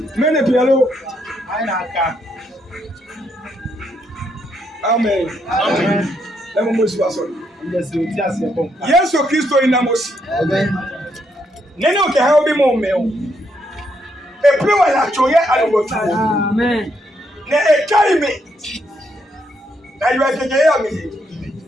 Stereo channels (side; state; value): both; normal; correlation 0.76